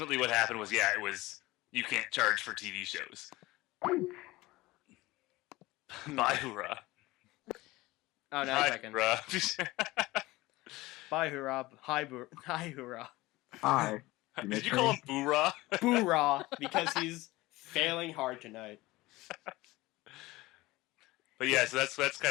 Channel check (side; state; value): right; quieter; 19.7 dB